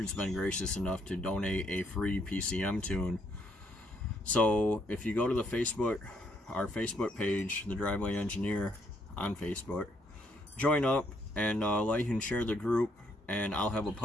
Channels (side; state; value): both; normal; correlation 0.71